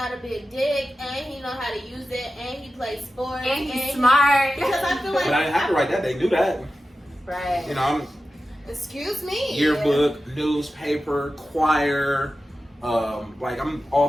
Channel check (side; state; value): both; normal; correlation 0.93